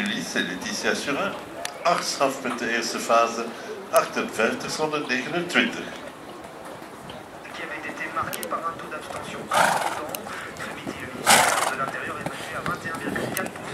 en Letitia Surin. 8 strafpunten eerste fase, 58 zonder 29. Qui avait été marqué par un taux d'abstention important. Ce midi, le ministère de l'Intérieur est passé à 21,4%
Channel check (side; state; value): both; identical; correlation 1.00